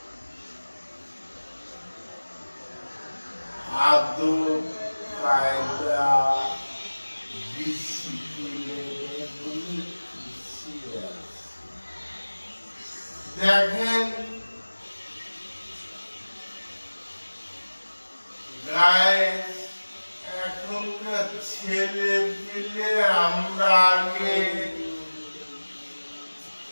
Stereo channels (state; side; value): inverted; both; correlation -1.00